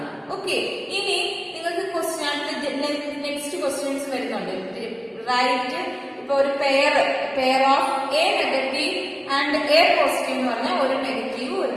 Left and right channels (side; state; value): both; identical; correlation 1.00